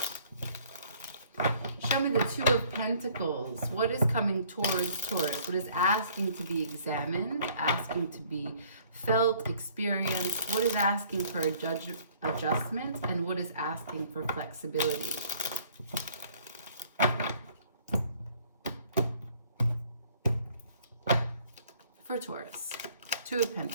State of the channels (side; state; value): both; inverted; correlation -0.58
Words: Show me the Two of Pentacles. What is coming towards Taurus? What is asking to be examined, asking to be felt, experienced? What is asking for adjustment? And what is asking for flexibility? For Taurus, Two of